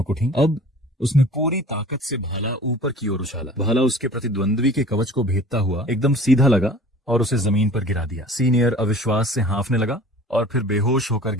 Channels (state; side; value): normal; both; correlation 0.44